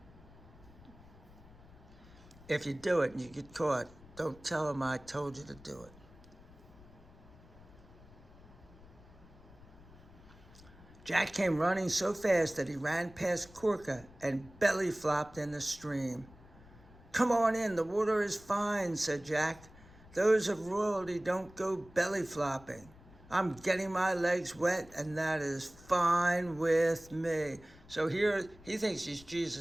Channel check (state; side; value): noise; left; rumble, 22 dB below the sound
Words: If you do it and you get caught, don't tell him I told you to do it. Jack came running so fast that he ran past Corka and belly flopped in the stream. "Come on in, the water is fine," said Jack. "Those of royalty don't go belly flopping. I'm getting my legs wet, and that is fine with me." So here, he thinks he's